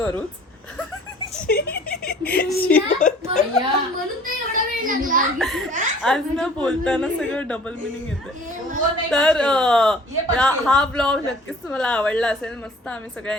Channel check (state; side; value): normal; both; correlation 0.51